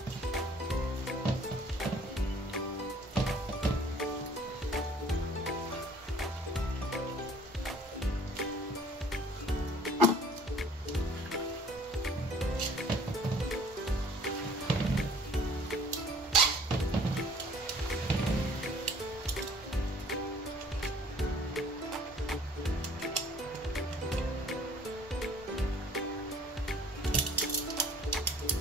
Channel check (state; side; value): normal; both; correlation 0.54